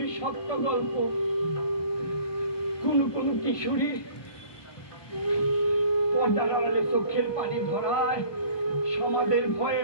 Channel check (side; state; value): right; late; 1.2 ms